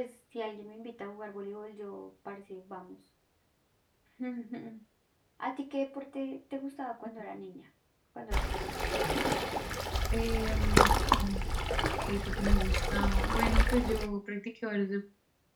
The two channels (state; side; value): identical; both; correlation 1.00